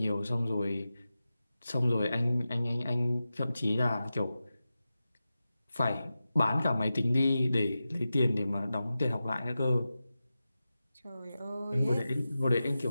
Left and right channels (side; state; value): both; inverted; correlation -0.93